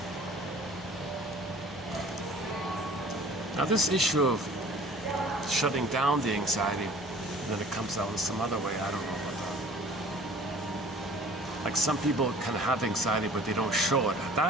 Now this issue of shutting down the anxiety, and then it comes out in some other way, I don't know about that. Like some people can have anxiety but they don't show it.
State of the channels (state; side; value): normal; both; correlation 0.49